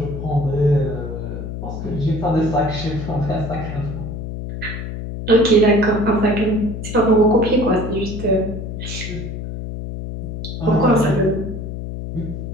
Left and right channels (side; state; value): left; noise; hum, 7 dB below the sound